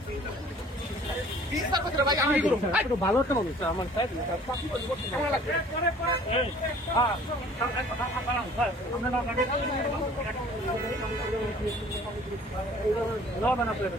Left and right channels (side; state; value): both; normal; correlation 0.52